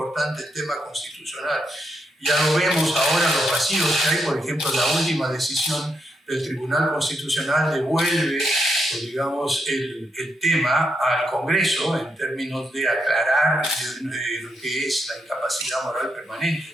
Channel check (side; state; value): both; normal; correlation 0.80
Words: el tema constitucional, ya lo vemos ahora los vacíos que hay, por ejemplo, la última decisión del Tribunal Constitucional devuelve, pues, digamos, el tema al Congreso en términos de aclarar lo que es la incapacidad moral permanente.